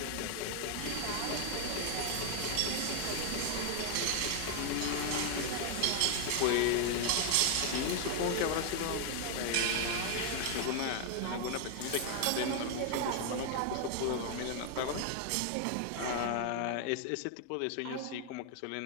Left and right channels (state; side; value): different; both; correlation 0.00